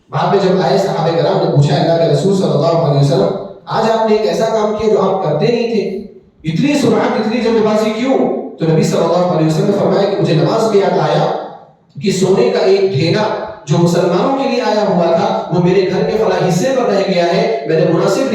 بعد میں جب آئے صحابہ کرام نے پوچھا اللہ کے رسول صلی اللہ علیہ وسلم آج آپ نے ایک ایسا کام کیا جو آپ کرتے نہیں تھے، اتنی سرعت اتنی جلد بازی کیوں؟ تو نبی صلی اللہ علیہ وسلم نے فرمایا کہ مجھے نماز میں یاد آیا کہ سونے کا ایک ڈھیلا جو مسلمانوں کے لیے آیا ہوا تھا وہ میرے گھر کے فلاں حصے پر رہ گیا ہے، میں نے مناسب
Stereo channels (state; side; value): identical; both; correlation 1.00